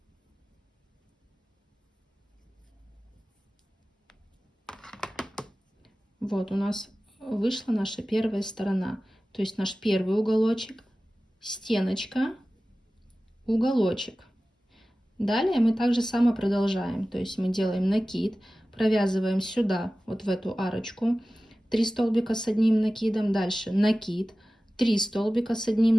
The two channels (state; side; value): normal; both; correlation 0.96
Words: Вот у нас вышла наша первая сторона. То есть наш первый уголочек, стеночка, уголочек. Далее мы также само продолжаем. То есть мы делаем накид, провязываем сюда, вот в эту арочку, 3 столбика с одним накидом. Дальше накид, 3 столбика с